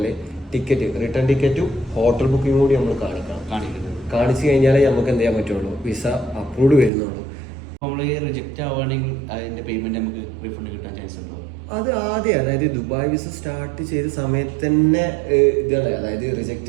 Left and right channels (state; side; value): drops out; left; at 6.9 s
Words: ടിക്കറ്റ് റിട്ടേൺ ടിക്കറ്റും ഹോട്ടൽ ബുക്കിംഗ് കൂടി നമ്മൾ കാണിച്ചു കഴിഞ്ഞാലേ നമുക്ക് എന്ത് ചെയ്യാൻ പറ്റുള്ളൂ, വിസ അപ്രൂവ്ഡ് വരുന്നുള്ളൂ. നമ്മൾ റിജക്റ്റ് ആവുകയാണെങ്കിൽ അതിന്റെ പേയ്മെന്റ് നമുക്ക് റീഫണ്ട് കിട്ടാൻ ചാൻസ് ഉണ്ടോ? അത് ആദ്യം അതായത് ദുബായ് വിസ സ്റ്റാർട്ട് ചെയ്ത സമയത്ത് തന്നെ ഇതാണ്, അതായത്